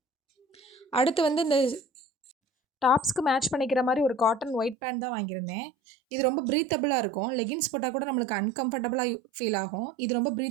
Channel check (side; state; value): left; drops out; at 4.8 s